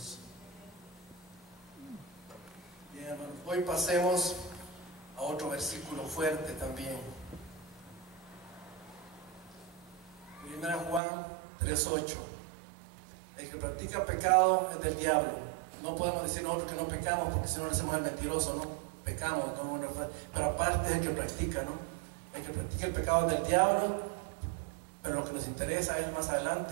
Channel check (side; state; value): left; drops out; at 11.0 s